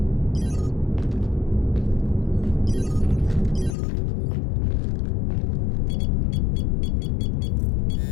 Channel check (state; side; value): drops out; right; at 3.8 s